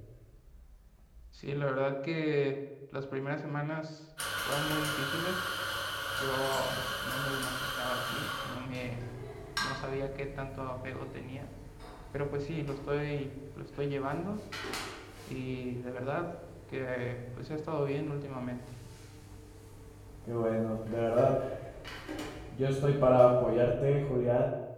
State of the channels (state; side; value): identical; both; correlation 1.00